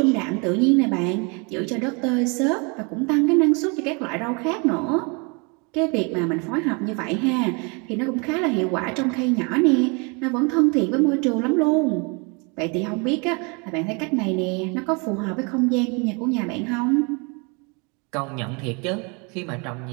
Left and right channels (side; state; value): left; quieter; 31.8 dB